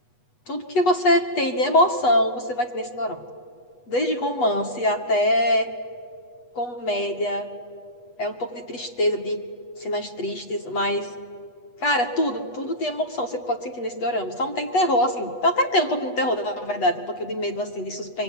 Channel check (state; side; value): late; right; 8.2 ms